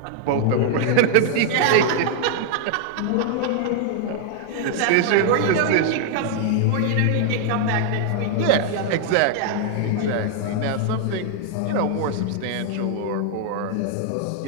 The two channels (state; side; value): different; both; correlation -0.01